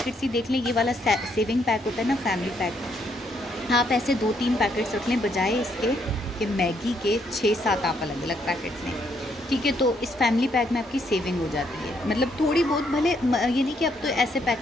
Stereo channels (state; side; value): normal; both; correlation 0.72